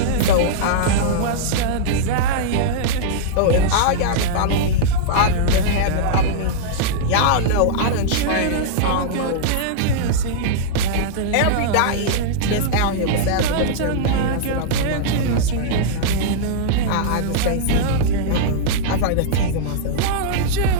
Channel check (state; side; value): different; both; correlation -0.02